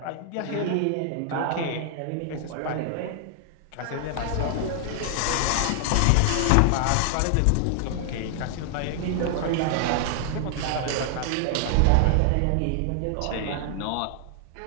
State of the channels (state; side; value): different; both; correlation 0.00